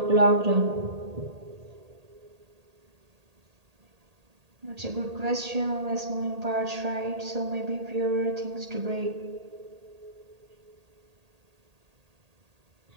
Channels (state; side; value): late; left; 1.8 ms